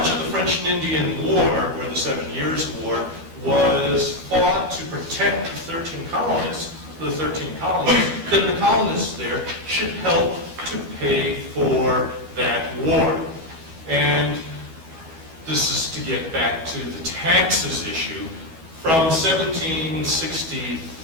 of the French and Indian War, or the 7 Years' War, was fought to protect the 13 colonies, then the colonists there should help to pay for that war. And this is to get back to the taxes issue. From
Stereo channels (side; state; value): left; late; 12 ms